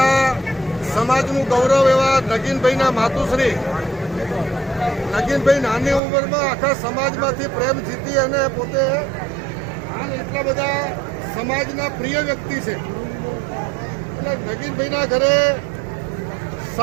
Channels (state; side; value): drops out; left; at 6.0 s